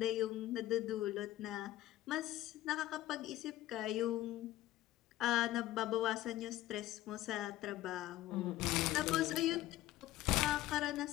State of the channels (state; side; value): quieter; right; 14.7 dB